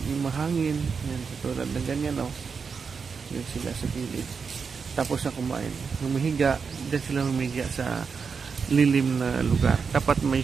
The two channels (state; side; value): quieter; left; 5.6 dB